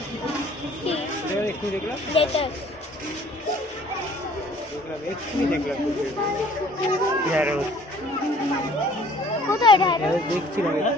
কি? একটু দেখলাম যেটা এক্ষুনি দেখলাম ঢেঁড়স। কোথায় ঢেঁড়স? দেখছিলাম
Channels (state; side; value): normal; both; correlation 0.54